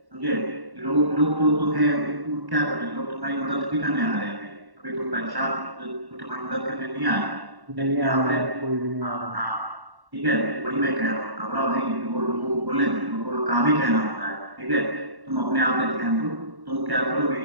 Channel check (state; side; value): late; left; 1.1 ms